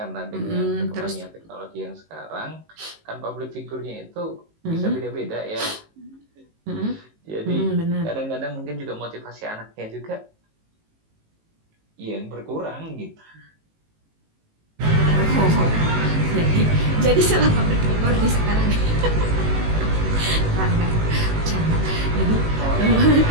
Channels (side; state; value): left; late; 19 ms